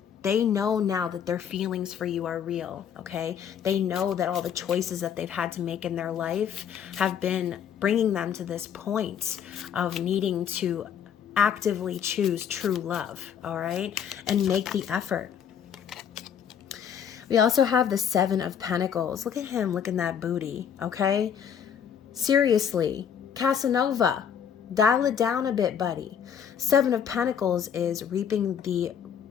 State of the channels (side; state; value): right; quieter; 8.2 dB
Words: They know now that their feelings for you are real, okay? They know that all the choices that they've had to make in their life have been bringing them to this point of needing to actively choose true love, all right? And make the effort. We also have the Seven of Pentacles. Look at him, look at that booty, okay? Seriously, Casanova, dial it down a bit, buddy. Seven of Pentacles is reaping the